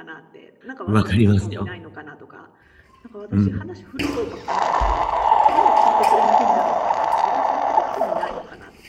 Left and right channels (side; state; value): both; identical; correlation 1.00